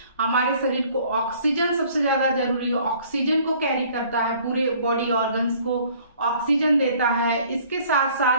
हमारे शरीर को ऑक्सीजन सबसे ज्यादा जरूरी है, ऑक्सीजन को कैरी करता है, पूरे बॉडी ऑर्गन्स को ऑक्सीजन देता है। इसके साथ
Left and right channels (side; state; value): both; inverted; correlation -0.56